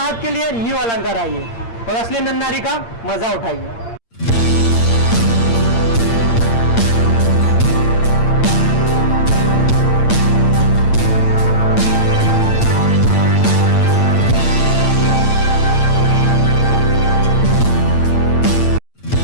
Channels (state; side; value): late; right; 8.7 ms